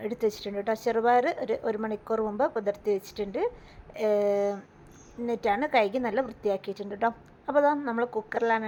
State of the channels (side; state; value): both; identical; correlation 1.00